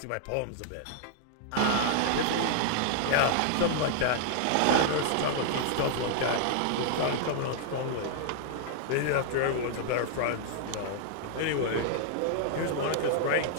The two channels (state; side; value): different; both; correlation -0.01